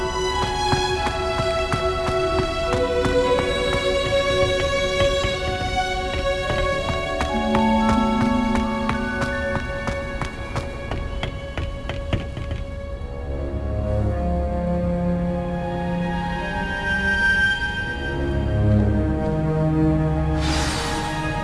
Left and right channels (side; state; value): both; identical; correlation 1.00